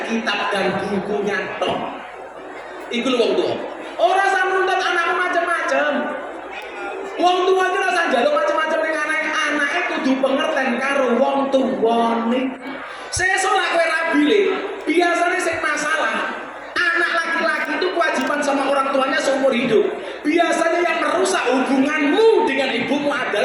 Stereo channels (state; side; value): identical; both; correlation 1.00